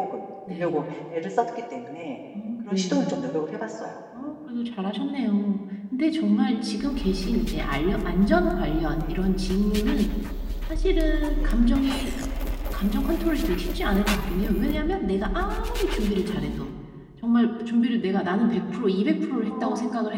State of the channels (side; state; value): both; identical; correlation 1.00